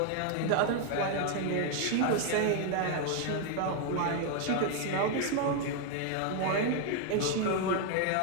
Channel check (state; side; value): different; both; correlation 0.00